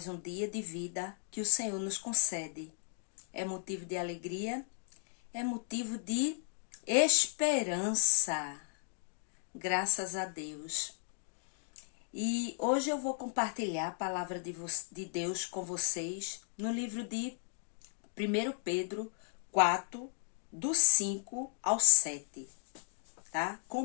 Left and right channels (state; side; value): silent; right; digital silence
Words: um dia de vida que o Senhor nos concede. É motivo de alegria, é motivo de esperança. Graças a Deus. E hoje eu vou compartilhar a palavra de Deus com vocês no livro de 1 Pedro 4, do 5 ao 7, tá?